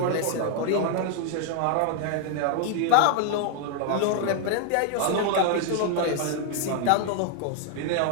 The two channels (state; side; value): different; both; correlation 0.00